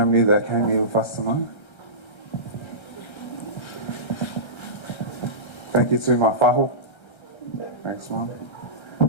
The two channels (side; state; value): right; late; 1.3 ms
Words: that came here with us tonight. Thank you to my whaho. Thanks, Mom.